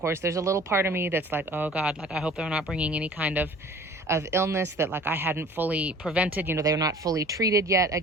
there's a little part of me that's like, oh God, like I hope they're not bringing any kind of illness that like I hadn't fully prevented. You know, they're not fully treated yet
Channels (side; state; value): both; normal; correlation 0.47